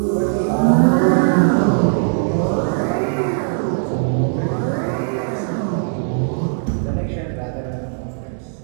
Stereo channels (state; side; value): silent; left; digital silence